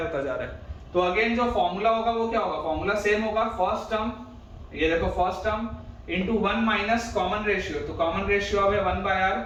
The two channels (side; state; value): both; identical; correlation 1.00